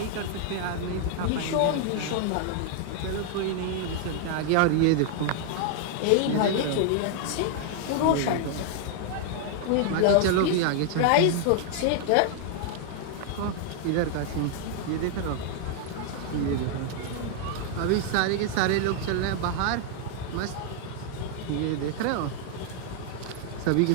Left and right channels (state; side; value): different; both; correlation 0.00